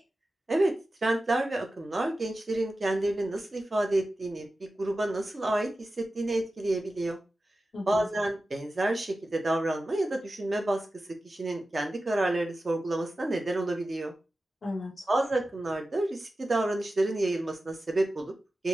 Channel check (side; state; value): both; normal; correlation 0.94